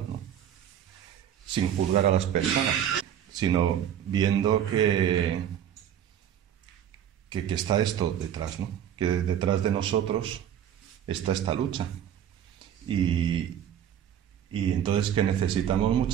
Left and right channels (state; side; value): quieter; left; 9.9 dB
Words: ¿no?, sin juzgar a las personas, sino viendo que está esto detrás, ¿no?, que detrás de nosotros está esta lucha. Y entonces que necesitamos